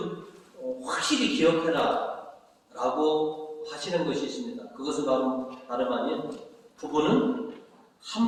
확실히 기억해라 라고 하시는 것이 있습니다. 그것은 바로 다름 아닌 부부는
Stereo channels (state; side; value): identical; both; correlation 1.00